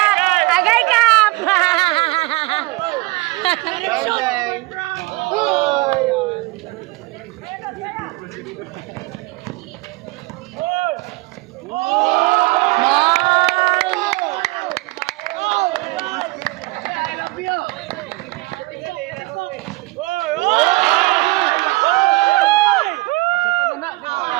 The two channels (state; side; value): quieter; left; 22.9 dB